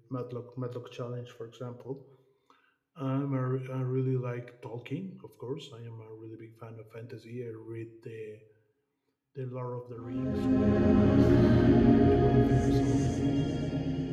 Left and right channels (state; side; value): identical; both; correlation 1.00